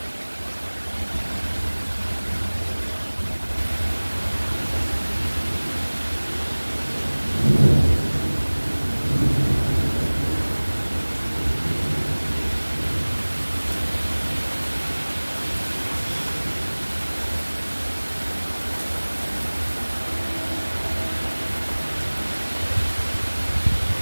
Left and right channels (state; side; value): inverted; both; correlation -1.00